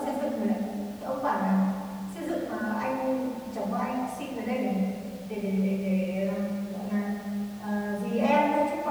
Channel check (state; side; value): identical; both; correlation 1.00